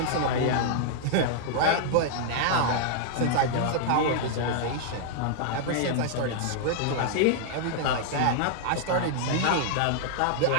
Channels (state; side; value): different; both; correlation -0.01